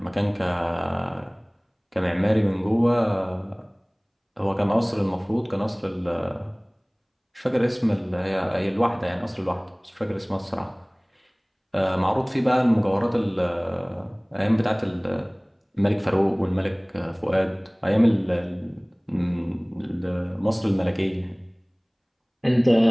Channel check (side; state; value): both; identical; correlation 1.00